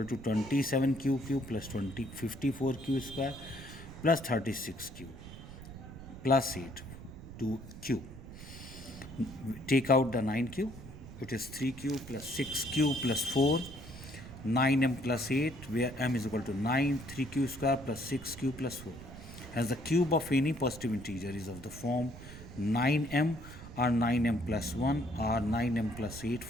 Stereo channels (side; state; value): right; noise; rumble, 14 dB below the sound